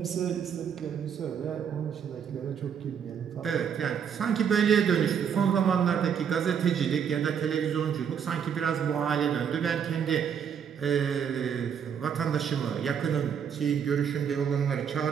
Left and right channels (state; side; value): quieter; left; 7.7 dB